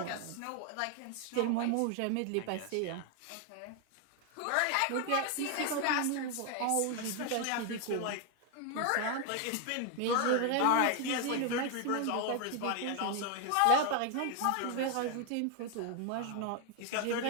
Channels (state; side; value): different; both; correlation 0.01